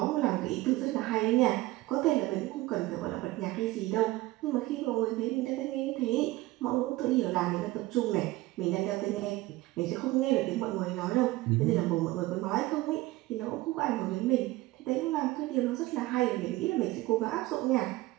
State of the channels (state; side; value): quieter; left; 18.6 dB